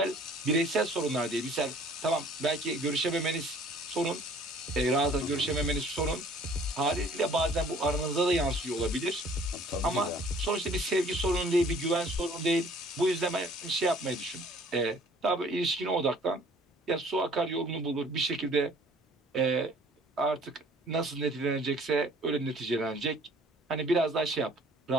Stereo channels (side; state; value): both; normal; correlation 0.54